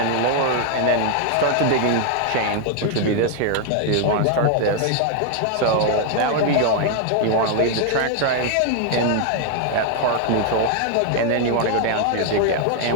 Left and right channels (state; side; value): different; both; correlation 0.00